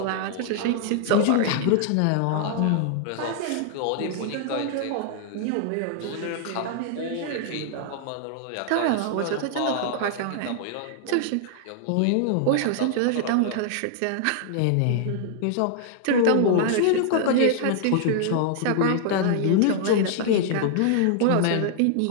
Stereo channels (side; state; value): both; different; correlation -0.01